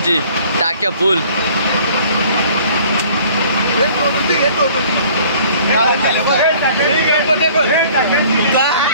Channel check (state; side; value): inverted; both; correlation -0.53